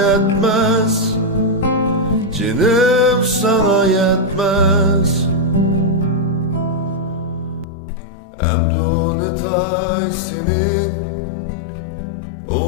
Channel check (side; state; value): right; drops out; at 7.7 s